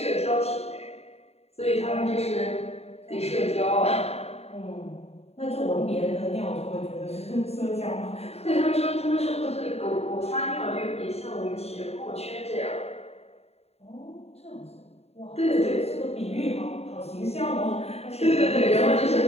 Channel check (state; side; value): late; right; 0.30 ms